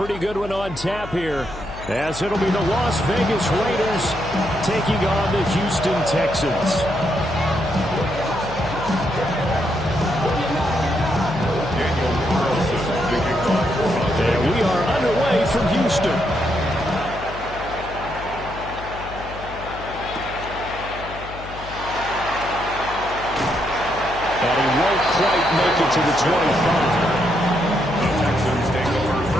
good one on tap here, as it'll be the Las Vegas Raiders taking on the Houston Texans. And we are underway from Houston. And he won't quite make it to the 25. The Texans take over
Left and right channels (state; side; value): noise; left; hum, 13 dB below the sound